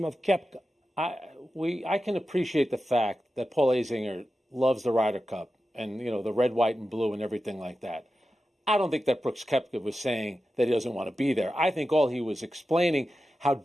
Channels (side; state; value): both; normal; correlation 0.92